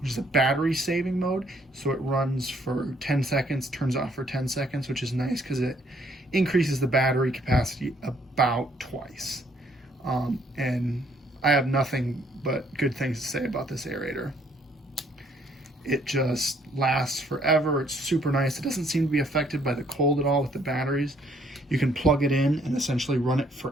is a battery saving mode. So it runs for 10 seconds, turns off for 10 seconds, which is nice because it increases the battery capacity about twice. And I have nothing but good things to say about this aerator. It just lasts forever. It's super nice. It doesn't seem to be affected by the cold at all with the batteries. You can plug it in and essentially run it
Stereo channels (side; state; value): both; normal; correlation 0.66